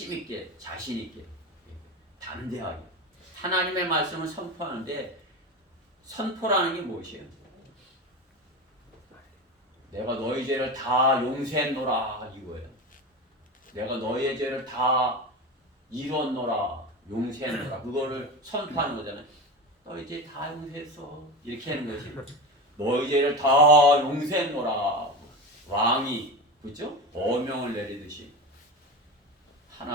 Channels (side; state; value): both; normal; correlation 0.24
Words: 있게 자신 있게 담대하게 하나님의 말씀을 선포하는데 선포라는 게 무엇이에요? 내가 너희 죄를 다 용서했노라 이거예요. 내가 너희의 죄를 다 이뤘노라 용서했노라 그거를 선포하는 거잖아요. 너희 죄 다 용서했어 이렇게 하는 거지. 너희 죄를 다 용서했노라 왕이, 그죠? 어명을 내리듯이